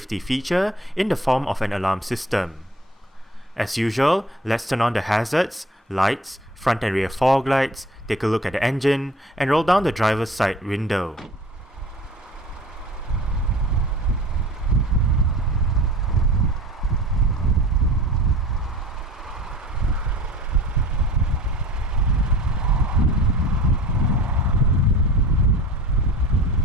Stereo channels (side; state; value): both; normal; correlation 0.44